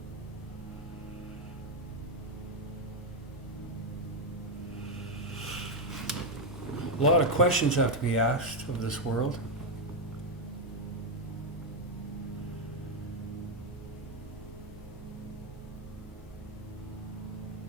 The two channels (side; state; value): both; normal; correlation 0.03